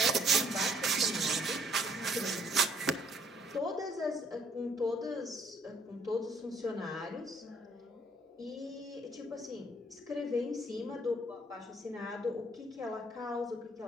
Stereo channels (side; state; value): both; normal; correlation 0.65